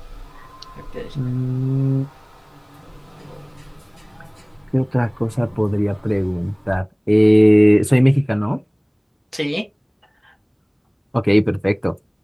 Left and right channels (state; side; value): identical; both; correlation 1.00